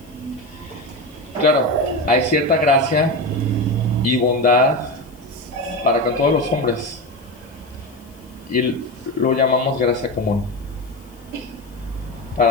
Claro, hay cierta gracia y bondad para con todos los hombres. Y lo llamamos gracia común.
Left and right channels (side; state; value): left; noise; hiss, 29 dB below the sound